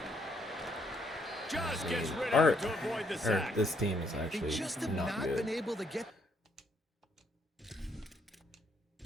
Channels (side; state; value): both; normal; correlation 0.71